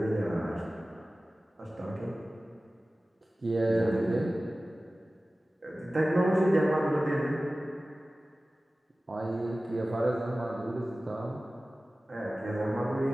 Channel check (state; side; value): normal; both; correlation 0.97